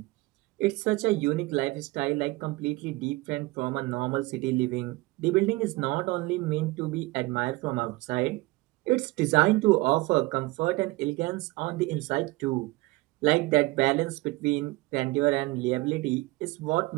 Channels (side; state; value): left; quieter; 21.7 dB